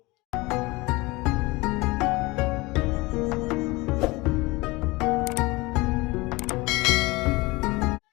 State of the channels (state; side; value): quieter; right; 22.9 dB